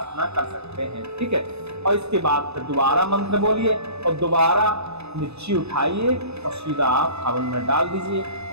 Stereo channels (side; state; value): left; late; 0.80 ms